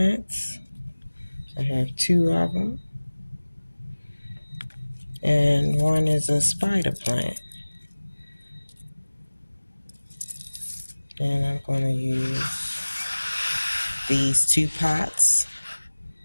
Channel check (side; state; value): both; inverted; correlation -1.00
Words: I have two of them. And one is a spider plant. And I'm going to use these two pots